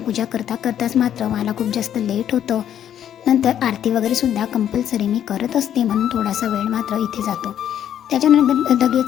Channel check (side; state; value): right; quieter; 10.1 dB